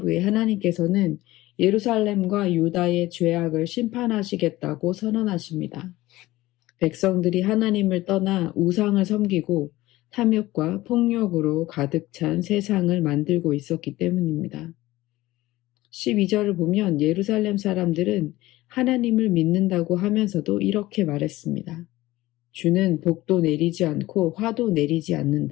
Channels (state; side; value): quieter; right; 17.6 dB